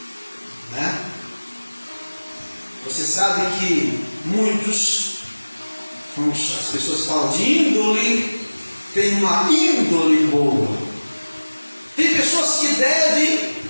né? Você sabe que muitos, as pessoas falam de índole, tem uma índole boa. Tem pessoas que devem,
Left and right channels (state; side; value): inverted; both; correlation -1.00